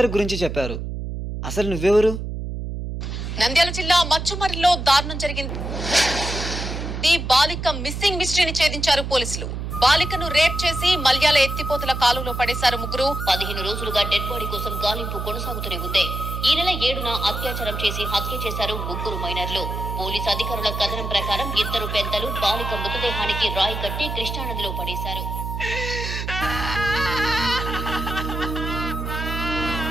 గురించి చెప్పారు. అసలు నువ్వెవరు? నంద్యాల జిల్లా మచ్చుమర్రిలో దారుణం జరిగింది. బాలిక మిస్సింగ్ మిస్టరీని ఛేదించారు పోలీసులు. బాలికను రేప్ చేసి మల్యాల ఎత్తిపోతల కాలువలో పడేశారు ముగ్గురు. 15 రోజులుగా డెడ్ బాడీ కోసం గాలింపు కొనసాగుతూనే ఉంది. ఈ నెల 7న అత్యాచారం చేసి హత్య చేశారు ముగ్గురు మైనర్లు. పోలీసు అధికారుల కథనం ప్రకారం 2 పెద్దలు బాలిక మృతదేహానికి రాయి కట్టి కృష్ణానదిలో పడేశారు.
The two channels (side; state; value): right; noise; hum, 5 dB below the sound